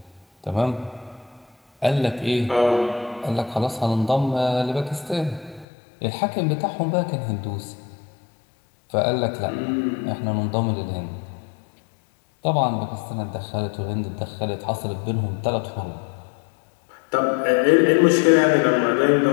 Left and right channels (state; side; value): drops out; right; at 5.7 s